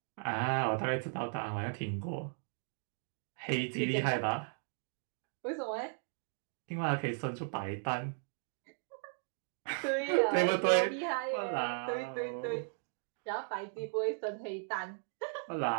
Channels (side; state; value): left; silent; 53 dB below the other